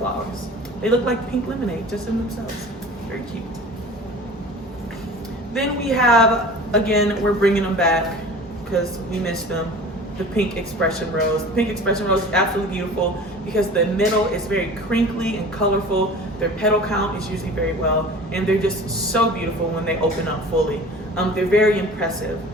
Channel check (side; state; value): both; normal; correlation 0.40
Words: They look like pink lemonade just in themselves. Very cute. Then we have, again, we're bringing them back because we missed them, the pink expression rose. The pink expression rose is absolutely beautiful because the middle is very crinkly and colorful. Their petal count is usually very well, and they're just so beautiful when they open up fully. They're very impressive,